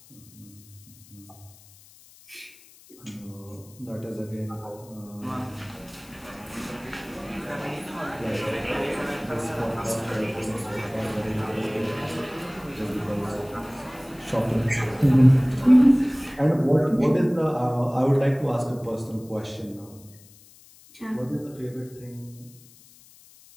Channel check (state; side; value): noise; left; hiss, 24 dB below the sound